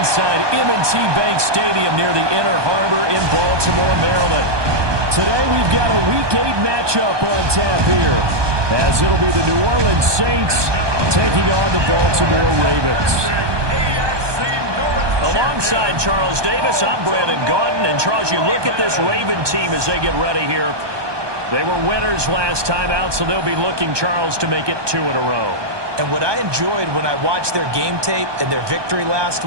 M&T Bank Stadium near the Inner Harbor in Baltimore, Maryland. Today we've got a Week 8 matchup on tap here, as it'll be the New Orleans Saints taking on the Baltimore Ravens. Alongside Charles Davis, I'm Brandon Gaudin. And Charles, you look at this Raven team as they get ready here. They were winners last time out, so they'll be looking, Charles, to make it 2 in a row. And what I enjoyed when I watched their game tape and their victory last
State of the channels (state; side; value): late; left; 1.2 ms